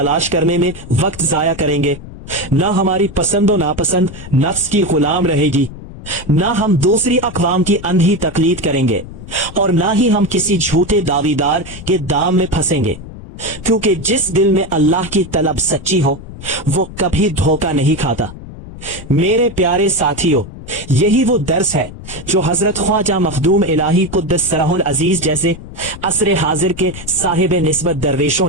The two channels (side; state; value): left; noise; rumble, 14 dB below the sound